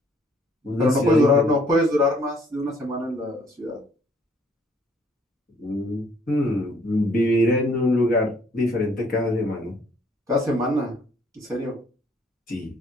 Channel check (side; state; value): both; normal; correlation 0.62